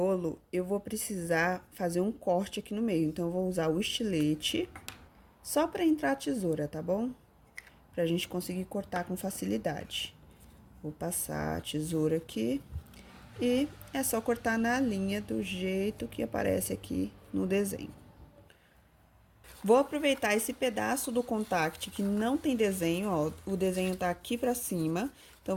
eu vou precisar fazer um corte aqui no meio. Então, eu vou usar o estilete só pra entrar a tesoura, tá bom? Pra gente conseguir cortar com facilidade. Vou passar a tesoura aqui e é só cortar na linha do jeito que aparece aqui no desenho. Vou aproveitar esse pedaço do contact que não tem desenho, ó, o desenho tá aqui pra cima. Então,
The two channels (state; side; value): identical; both; correlation 1.00